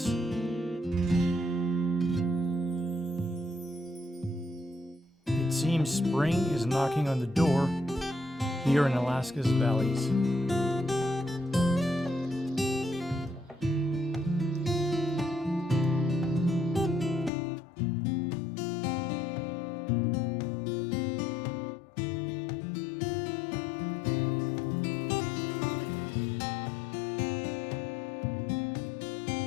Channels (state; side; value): drops out; right; at 17.3 s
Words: It seems spring is knocking on the door here in Alaska's valleys.